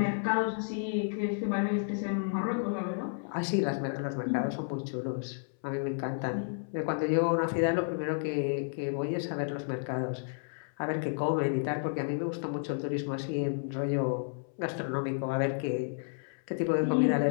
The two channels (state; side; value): silent; right; 57 dB below the other